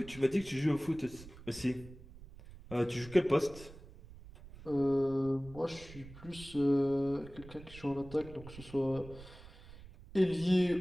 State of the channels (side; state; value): right; noise; rumble, 17 dB below the sound